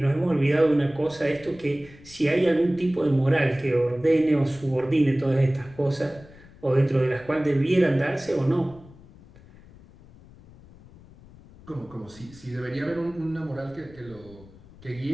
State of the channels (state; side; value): noise; left; rumble, 22 dB below the sound